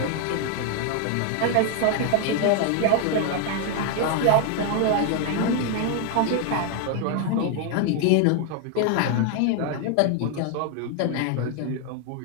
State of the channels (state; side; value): different; both; correlation 0.01